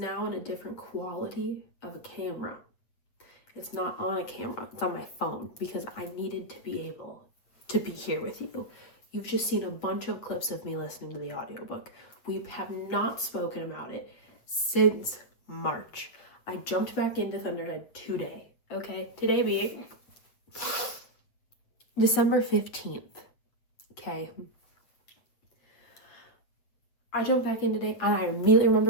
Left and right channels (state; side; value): late; right; 8.4 ms